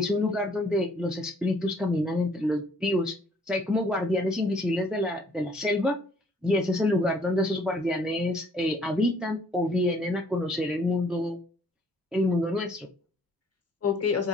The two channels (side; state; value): both; normal; correlation 0.62